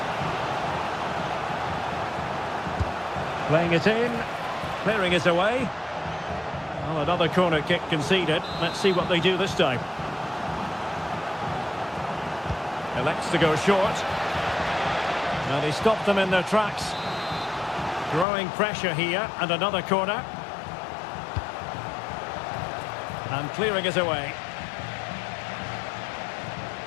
Playing it in, clearing it away. Well, another corner kick conceded. Let's see what they do this time. Elects to go short. And he stopped them in their tracks. Growing pressure here, and another corner. And clearing it away.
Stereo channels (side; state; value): right; drops out; at 18.2 s